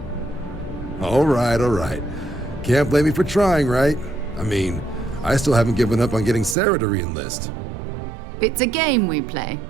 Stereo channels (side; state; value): left; drops out; at 6.6 s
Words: All right. Can't blame me for trying, right? I mean, I still haven't given up on getting Sarah to re-enlist. It's a game we play.